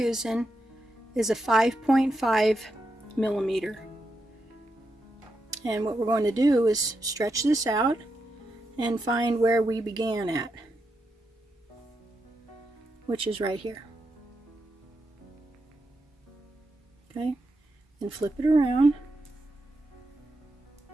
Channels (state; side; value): normal; both; correlation 0.85